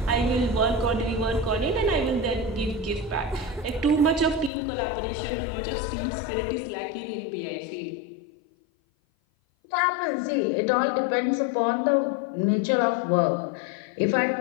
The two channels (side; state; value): right; drops out; at 4.5 s